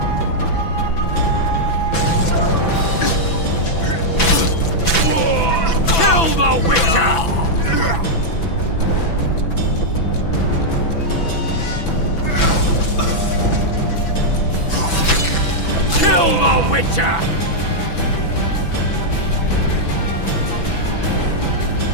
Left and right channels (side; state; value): right; late; 6.0 ms